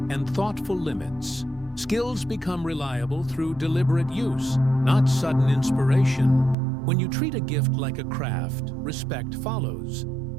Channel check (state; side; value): drops out; left; at 6.6 s